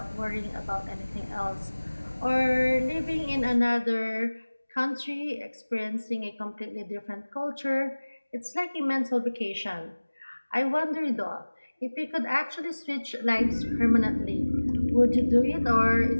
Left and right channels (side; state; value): both; inverted; correlation -1.00